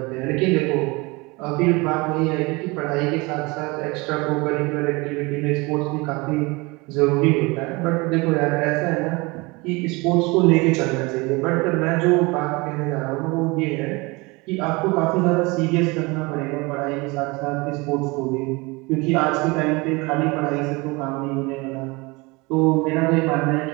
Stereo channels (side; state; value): left; quieter; 25.2 dB